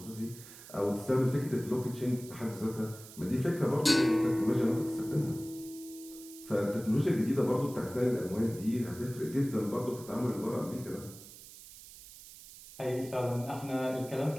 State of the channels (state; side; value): noise; right; hiss, 17 dB below the sound